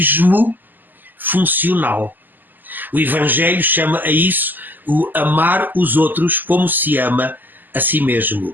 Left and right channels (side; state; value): left; late; 0.088 ms